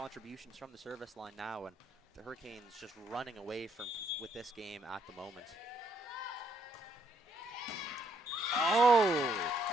from the service line now, and the Hurricanes just running away with this game at the moment. Oh!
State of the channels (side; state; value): both; normal; correlation 0.72